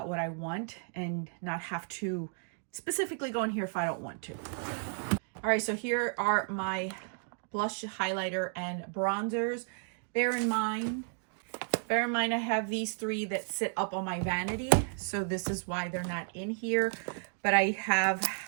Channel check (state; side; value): silent; left; 56 dB below the other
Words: what I want and not have to specifically go in here if I don't want to. All right, so here are my blush, highlighter, and bronzers. Bear in mind I have these 3 that sit up on my vanity, so this is why they're not in here. But I have